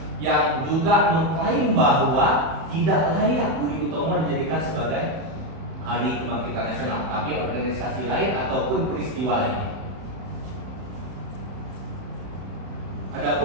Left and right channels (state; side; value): late; left; 31 ms